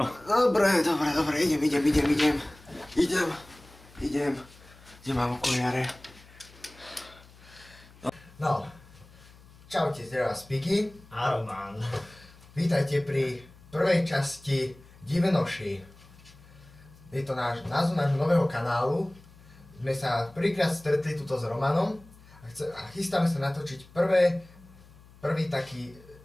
Dobre, idem. Kde mám okuliare? No. Čaute, zdravá Spiky. A Roman. Vítajte pri prvej časti Divenoši. Je to názov nášho nového kanálu. Sme sa prvýkrát stretli tuto s Romanom a chystáme sa natočiť prvý taký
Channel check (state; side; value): noise; left; hum, 23 dB below the sound